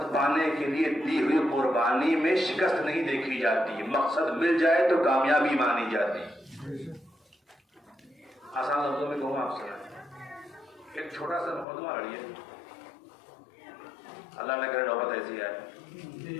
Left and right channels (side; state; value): right; drops out; at 11.7 s